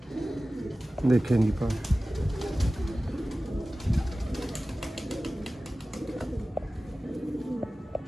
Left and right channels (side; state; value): both; normal; correlation 0.96